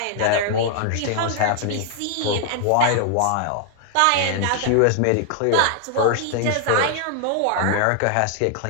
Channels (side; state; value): both; different; correlation 0.00